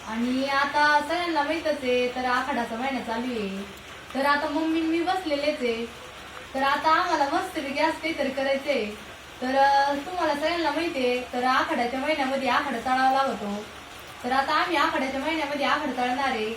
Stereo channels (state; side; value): identical; both; correlation 1.00